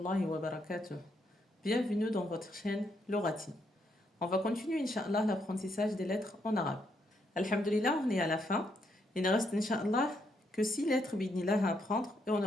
wa barakatuh. Bienvenue dans votre chaîne Lorati. On va continuer, Inch'Allah, l'apprentissage des lettres en arabe. Alhamdulillah, on est à la fin. Il ne reste, Inch'Allah, que 6 lettres, bidnillah, à apprendre. Et on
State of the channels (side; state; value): both; normal; correlation 0.76